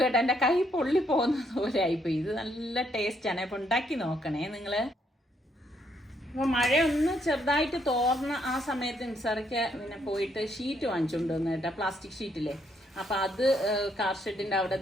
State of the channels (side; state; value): both; normal; correlation 0.73